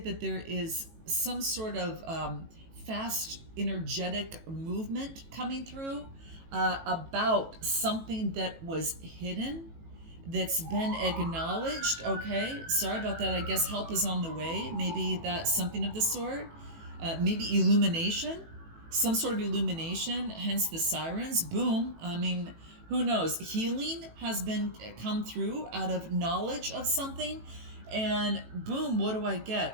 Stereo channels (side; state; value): left; late; 18 ms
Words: that there is some sort of fast, energetic movement coming through about something that was hidden, that's been acknowledged. Okay, sorry about that. I guess help is on the way. Maybe that's something of the sort. Maybe illumination, some sort of illumination, hence the sirens. Boom. I mean, who knows? Healing has been come through out of knowledge of something, and boom, what do I